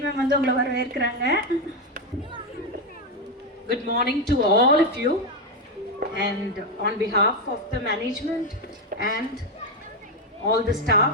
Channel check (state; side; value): normal; both; correlation 0.07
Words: ma'am வந்து உங்களை வரவேற்கிறாங்க. Good morning to all of you, and on behalf of the management and all the